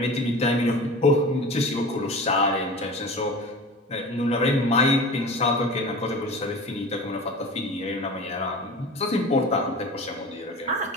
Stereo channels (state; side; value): normal; both; correlation 0.35